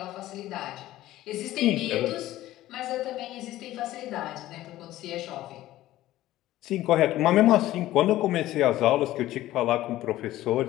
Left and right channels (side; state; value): right; quieter; 15.2 dB